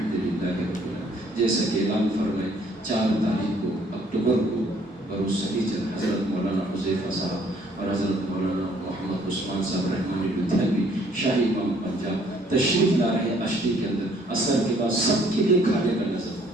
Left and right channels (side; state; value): both; normal; correlation 0.62